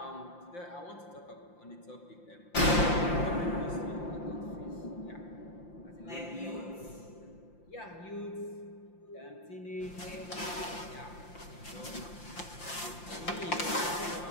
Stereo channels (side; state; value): right; late; 5.8 ms